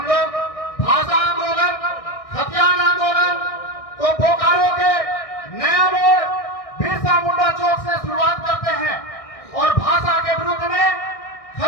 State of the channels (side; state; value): right; late; 1.6 ms